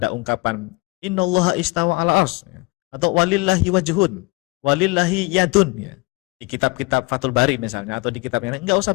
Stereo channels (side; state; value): right; quieter; 24.7 dB